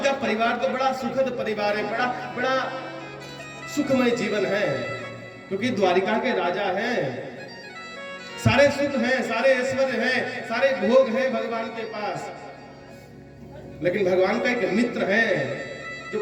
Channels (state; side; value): identical; both; correlation 1.00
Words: का परिवार तो बड़ा सुखद परिवार है, बड़ा सुखमय जीवन है, क्योंकि द्वारिका के राजा हैं, सारे सुख हैं, सारे ऐश्वर्य हैं, सारे भोग हैं भगवान के पास। लेकिन भगवान का एक मित्र है